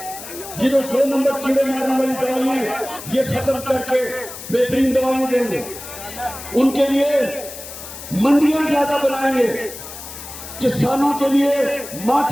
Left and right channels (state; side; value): noise; left; hiss, 12 dB below the sound